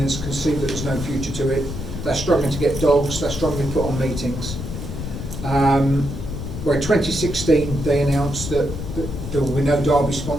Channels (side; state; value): left; noise; rumble, 7 dB below the sound